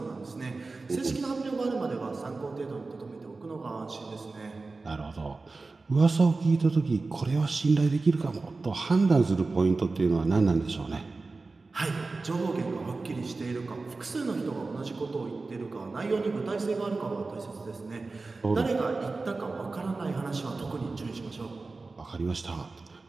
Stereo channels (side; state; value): left; quieter; 3.7 dB